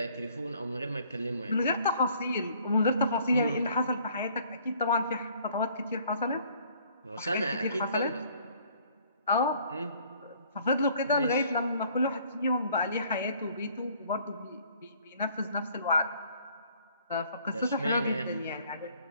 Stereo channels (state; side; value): inverted; both; correlation -0.59